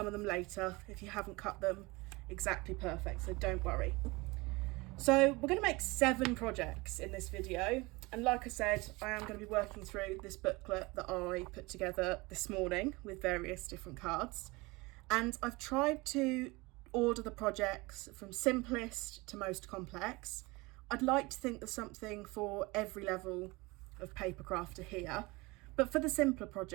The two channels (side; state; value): left; quieter; 23.8 dB